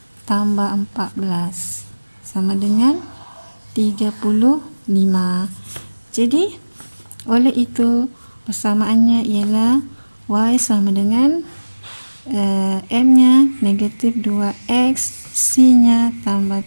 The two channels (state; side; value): inverted; both; correlation -1.00